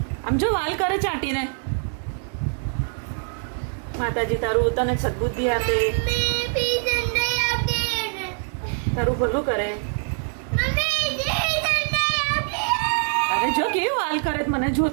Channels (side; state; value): left; silent; 59 dB below the other